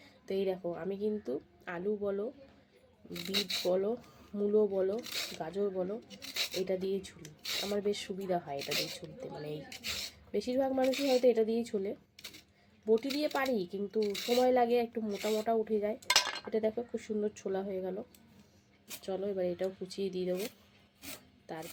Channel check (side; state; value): both; identical; correlation 1.00